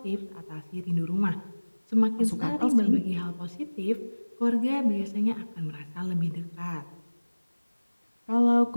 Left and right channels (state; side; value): inverted; both; correlation -1.00